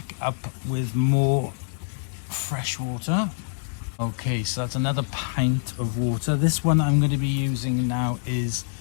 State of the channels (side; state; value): right; silent; digital silence